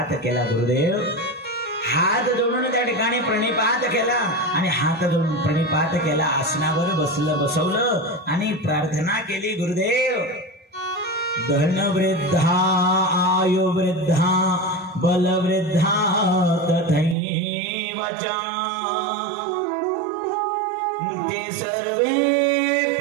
केला. गुरुदेव हात जोडून त्या ठिकाणी प्रणिपात केला आणि हात जोडून प्रणिपात केला. आसनावर बसवलं आणि प्रार्थना केली. गुरुदेव, धन वृद्धा आयु वृद्धा बल वृद्धा तथैवच ते सर्वे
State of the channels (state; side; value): drops out; left; at 17.2 s